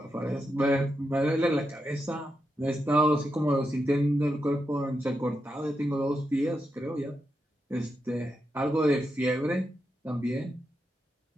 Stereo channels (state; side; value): normal; both; correlation 0.86